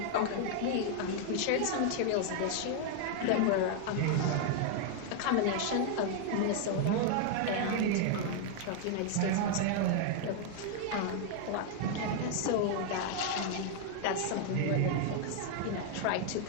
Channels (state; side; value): different; both; correlation 0.00